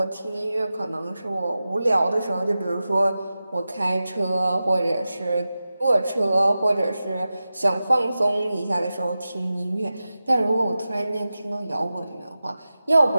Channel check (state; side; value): inverted; both; correlation -0.94